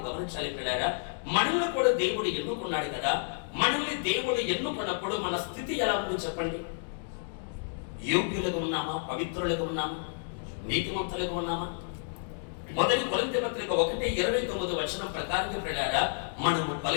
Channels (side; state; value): right; silent; digital silence